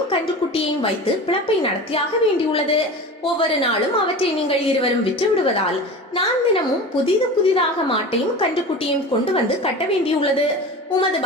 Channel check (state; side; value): normal; both; correlation 0.33